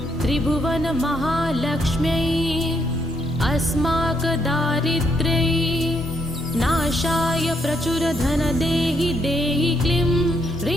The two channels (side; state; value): both; normal; correlation 0.75